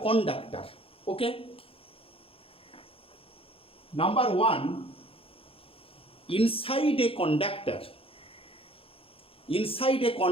conductor. Okay. Number one, inside a conductor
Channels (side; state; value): right; late; 0.27 ms